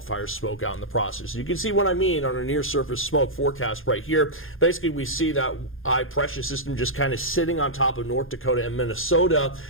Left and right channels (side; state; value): right; late; 0.59 ms